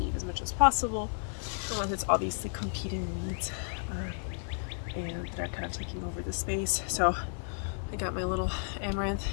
as much as possible, unless it's obviously competing weeds and that are kind of taking over the space. So I got my little amaranth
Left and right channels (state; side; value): silent; right; digital silence